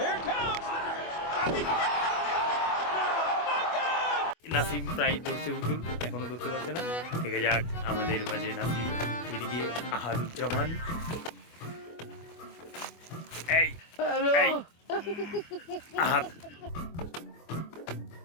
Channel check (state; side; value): late; right; 24 ms